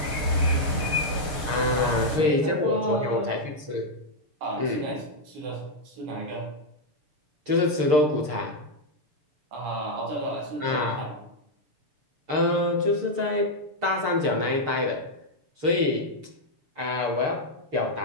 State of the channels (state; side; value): late; left; 6.6 ms